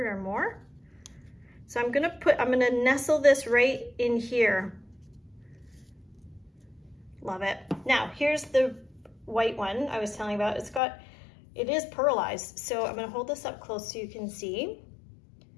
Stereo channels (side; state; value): right; drops out; at 10.8 s